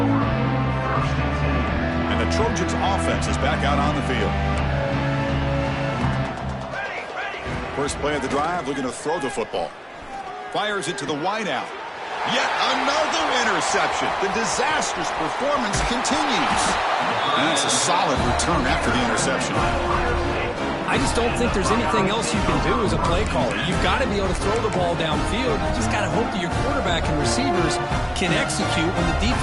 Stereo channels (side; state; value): both; identical; correlation 1.00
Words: The Trojans offense is back out on the field. First play of the drive, looking to throw the football. Fires it to the wideout. Yet another interception. The disastrous performance continues. And that's a solid return after the interception. I just don't think there's anything else you can do as a play caller. You've got to be able to throw the ball downfield. You just got to hope that your quarterback and receivers can execute when the